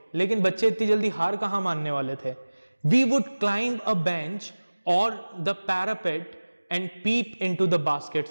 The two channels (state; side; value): inverted; both; correlation -1.00